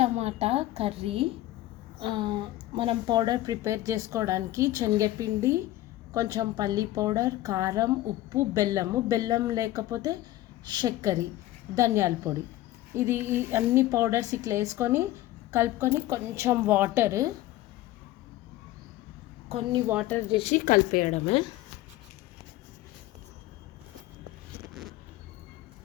కర్రీ. మనం powder prepare చేసుకోవడానికి శనగపిండి, కొంచెం పల్లి పౌడర్, కారం, ఉప్పు, బెల్లం లేకపోతే చక్కెర, ధనియాల పొడి, ఇది అన్ని పౌడర్స్ ఇట్లా వేసుకొని కలుపుకొని కొన్ని వాటర్ చేసి కలిపేయడమే.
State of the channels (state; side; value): quieter; right; 15.6 dB